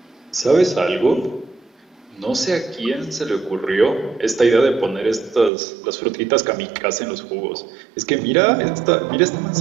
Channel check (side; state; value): left; drops out; at 5.5 s